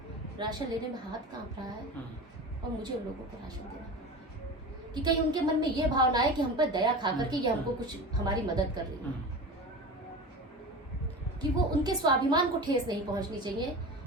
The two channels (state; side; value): normal; both; correlation 0.31